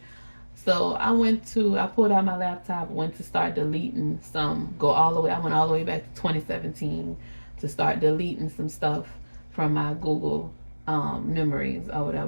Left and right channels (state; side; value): inverted; both; correlation -1.00